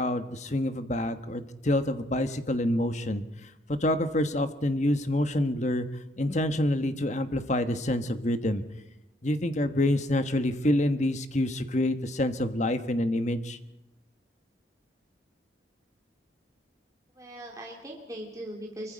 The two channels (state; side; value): normal; both; correlation 0.69